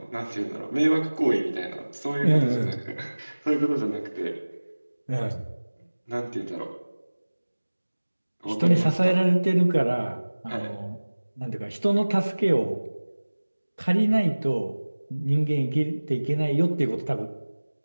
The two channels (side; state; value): both; inverted; correlation -1.00